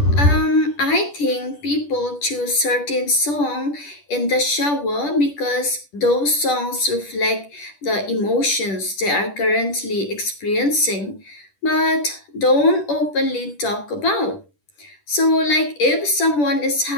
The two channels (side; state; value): right; late; 10 ms